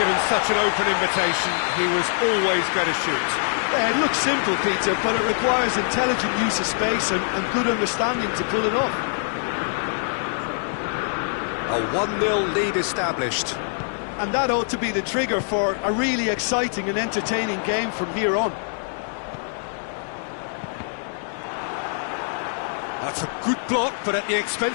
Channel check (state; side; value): silent; right; 63 dB below the other